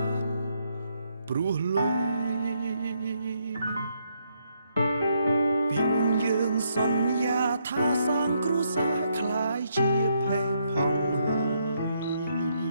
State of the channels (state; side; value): inverted; both; correlation -0.75